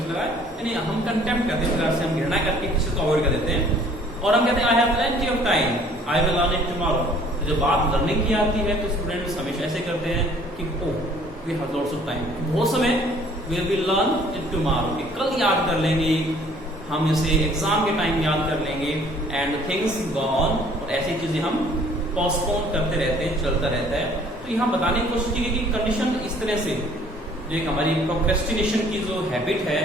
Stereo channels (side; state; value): both; normal; correlation 0.56